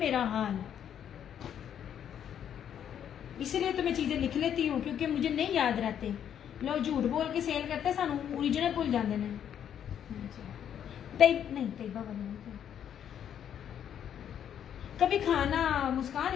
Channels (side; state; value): right; quieter; 9.3 dB